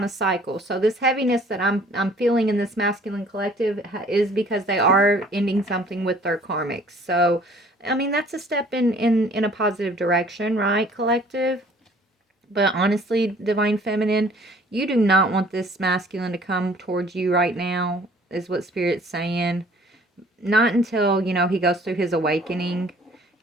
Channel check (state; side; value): normal; both; correlation 0.55